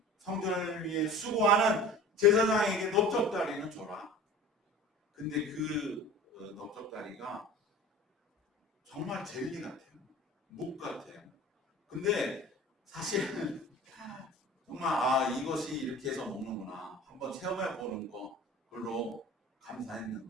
성전을 위해 수고하는 제사장에게 넓적다리는 줘라. 근데 그 넓적다리가 정말 젤리 같아요. 묵 같아요. 근데 사실은 정말 이것이 이렇게 해서 먹는구나. 한번 체험해 보는 거 별로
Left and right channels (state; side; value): normal; both; correlation 0.39